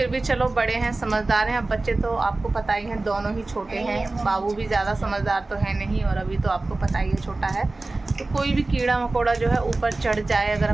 भी चलो बड़े हैं, समझदार हैं। अब बच्चे तो आपको पता ही है, दोनों ही छोटे हैं। बाबू भी ज़्यादा समझदार तो है नहीं, और अभी तो आपको पता ही है छोटा है। तो कोई भी कीड़ा मकोड़ा जो है ऊपर चढ़ जाए, अगर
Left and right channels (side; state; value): left; quieter; 3.2 dB